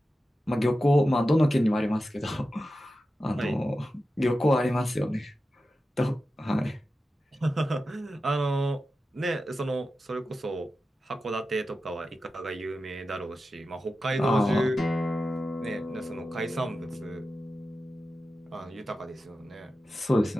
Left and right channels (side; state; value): both; normal; correlation 0.92